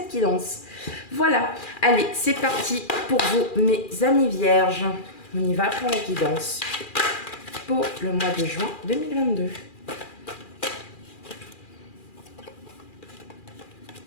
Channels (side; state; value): right; late; 2.4 ms